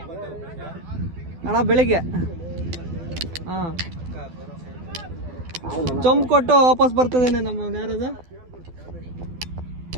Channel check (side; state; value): left; late; 12 ms